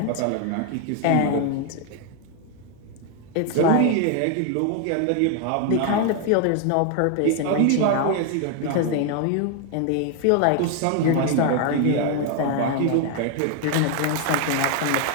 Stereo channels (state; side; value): different; both; correlation 0.01